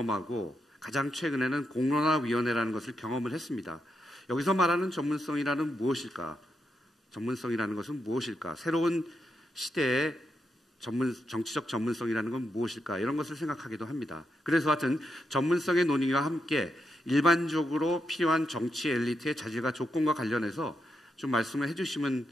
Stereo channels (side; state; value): both; normal; correlation 0.83